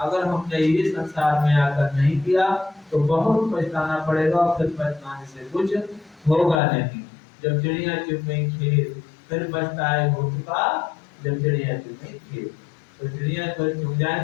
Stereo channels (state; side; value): drops out; right; at 6.6 s